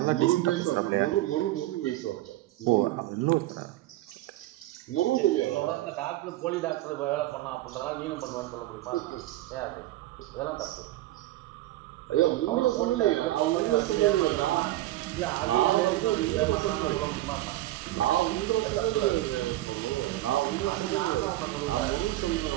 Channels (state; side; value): quieter; left; 16.0 dB